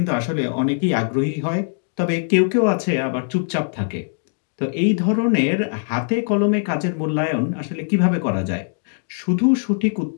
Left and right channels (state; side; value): silent; right; 65 dB below the other